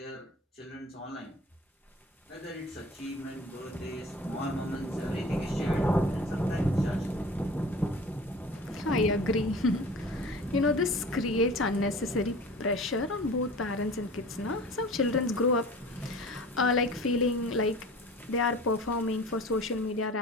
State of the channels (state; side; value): normal; both; correlation 0.41